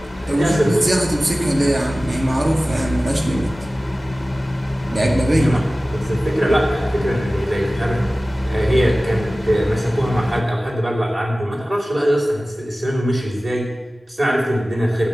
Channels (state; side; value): normal; both; correlation 0.97